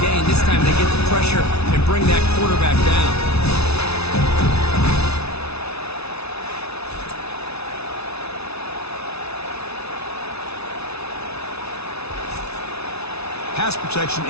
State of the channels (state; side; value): late; right; 0.80 ms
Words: This time they get the pressure and bring that quarterback down. Pass protection